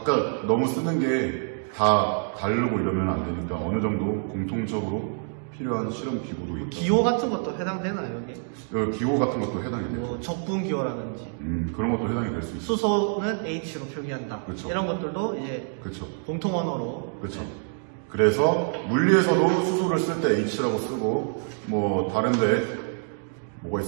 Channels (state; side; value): silent; left; 56 dB below the other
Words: 너무 쓰는 게 다 다르고 이러면 안 되니까 어느 정도 공통적으로 필요한 실험 기구도 있다. 기호 같은 것도 해당되나요 여기? 기호 같은 것도 해당이 돼요. 뭐 적분 기호라든지 그런 것도 해당이 될 수 있어요. 수소는 H로 표기한다. 그쵸. 이런 것들도 이제 그렇죠. 공통 언어로. 그렇죠. 그래서 물리에서도 수소를 쓸 때 H라고 쓰고 뭐 다른데 뭐가